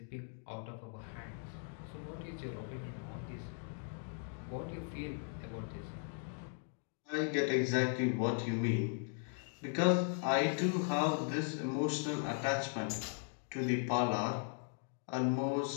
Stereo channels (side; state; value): right; silent; 52 dB below the other